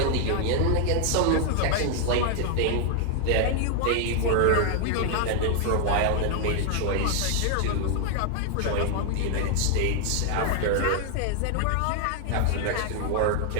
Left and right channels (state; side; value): different; both; correlation 0.00